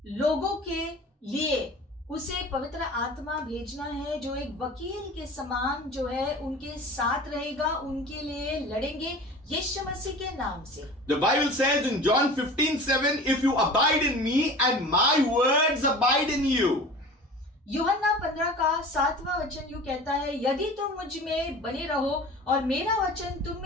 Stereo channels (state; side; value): normal; both; correlation 0.39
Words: लोगों के लिए उसे पवित्र आत्मा भेजना है जो एक वकील के समान जो है उनके साथ रहेगा, उनके लिए लड़ेंगे यीशु मसीह के नाम से. The Bible says in John 15:7, if you abide in me and my words abide in you. यूहन्ना 15 का 7वां वचन यूं कहता है, यदि तुम मुझ में बने रहो और मेरा वचन तुम